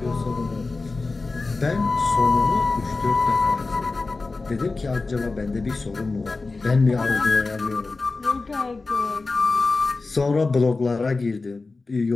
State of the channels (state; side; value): quieter; right; 3.7 dB